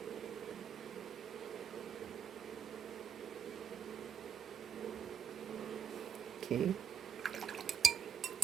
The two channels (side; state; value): left; quieter; 7.6 dB